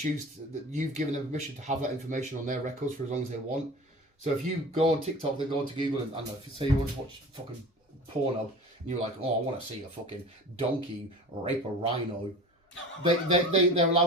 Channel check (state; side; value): normal; both; correlation 0.37